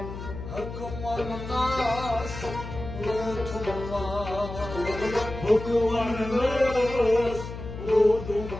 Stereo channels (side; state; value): left; noise; hum, 9 dB below the sound